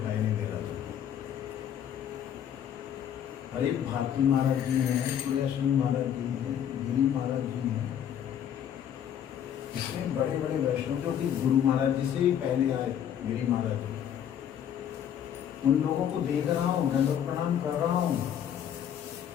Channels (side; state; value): right; quieter; 9.5 dB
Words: नहीं दे रहा था। अरे भारती महाराज जी हैं, सूर्याश्रमी महाराज जी हैं, गिरी महाराज जी हैं, इसमें बड़े बड़े वैष्णव जो कि गुरु महाराज जी से भी पहले आए, गिरी महाराज जी, उन लोगों को देख रहा हूँ, दंडवत प्रणाम कर रहा हूँ,